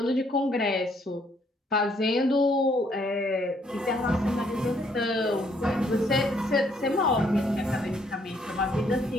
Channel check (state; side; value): normal; both; correlation 0.68